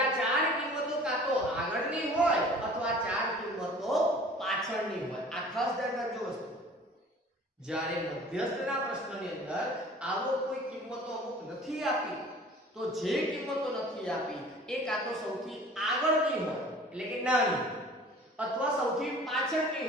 આ 4 કિંમતો કાં તો આગળની હોય અથવા 4 કિંમતો પાછળની હોય. આ ખાસ ધ્યાન રાખજો વસ્તુ. જ્યારે મધ્યસ્થના પ્રશ્નની અંદર આવો કોઈ કિંમતો અમુક નથી આપી તો જે કિંમતો નથી આપી એ કાં તો સૌથી આગળની હોય એટલે કે નાની અથવા સૌથી પાછળની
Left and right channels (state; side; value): normal; both; correlation 0.47